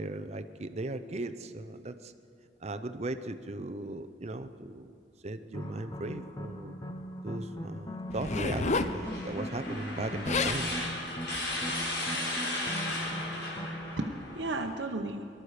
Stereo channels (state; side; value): normal; both; correlation 0.37